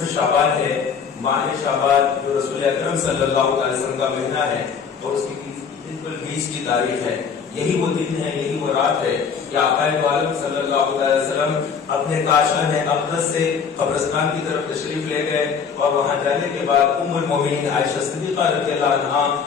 شعبان ہے، ماہ شعبان جو رسول اکرم صلی اللہ علیہ وسلم کا مہینہ ہے اور اس کی بالکل 20 کی تاریخ ہے۔ یہی وہ دن ہے، یہی وہ رات ہے کہ آقا دو عالم صلی اللہ علیہ وسلم اپنے کاشان اقدس سے قبرستان کی طرف تشریف لے گئے اور وہاں جانے کے بعد ام المومنین عائشہ صدیقہ رضی اللہ عنہا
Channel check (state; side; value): quieter; right; 6.3 dB